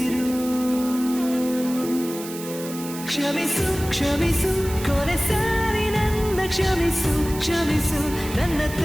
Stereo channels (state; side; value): noise; right; hiss, 12 dB below the sound